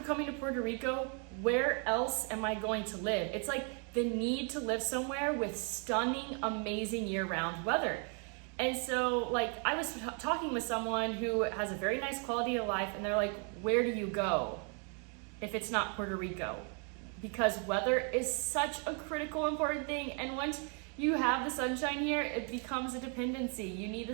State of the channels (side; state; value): left; quieter; 38.7 dB